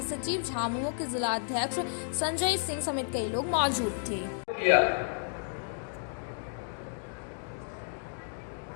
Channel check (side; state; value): right; silent; digital silence